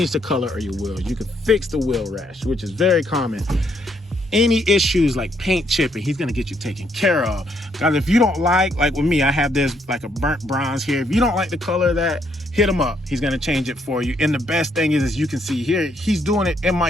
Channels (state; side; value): normal; both; correlation 0.72